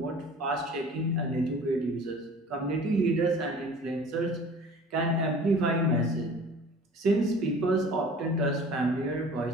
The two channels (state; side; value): normal; both; correlation 0.45